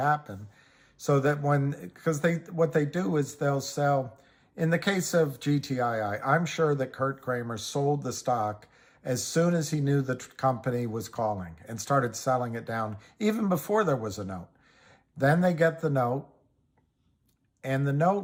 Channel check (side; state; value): both; identical; correlation 1.00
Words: So that because what they do is they'll sell, in the case of GTII, I'm sure that Kurt Kramer sold the stock as soon as he knew the company was calling and started selling it down, even before there was a note. Then they get the note, and the